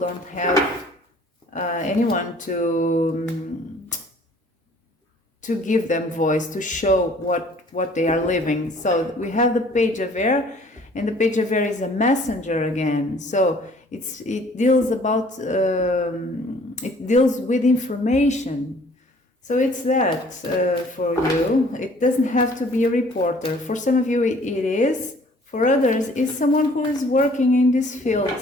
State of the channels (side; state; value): both; normal; correlation 0.55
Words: have anyone to give them voice, to show what they are living. So we have the Page of Air, and the Page of Air is a messenger again. So it deals with information. So it's that for you. It doesn't have to be a reporter. For some of you, it is. For others, it's someone who is working in this field.